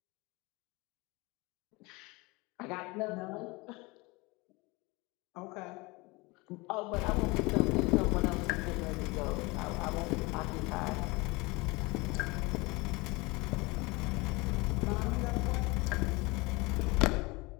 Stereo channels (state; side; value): quieter; right; 24.8 dB